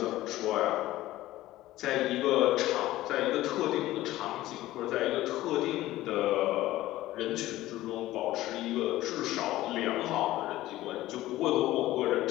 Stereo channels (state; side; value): quieter; right; 16.0 dB